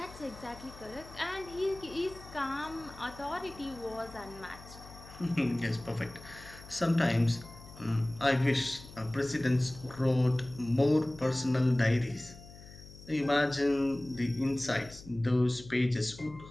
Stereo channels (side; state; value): left; noise; hum, 18 dB below the sound